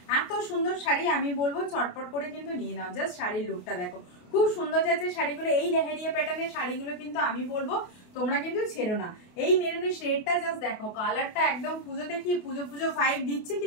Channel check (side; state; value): right; late; 28 ms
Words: এত সুন্দর শাড়ি, আমি বলবো চটপট করে কিন্তু নিয়ে নাও। জাস্ট শাড়ির লুকটা দেখো, খুব সুন্দর যাচ্ছে শাড়িগুলো। এই লেহেরিয়া প্যাটার্নের শাড়িগুলো কিন্তু আমি বলবো তোমরা কিন্তু ছেড়ো না। এই মেরুনের শেডটা জাস্ট দেখো, কালারটা একদম পুজোতে কি পুজো পুজো ফাইভ দিচ্ছে কি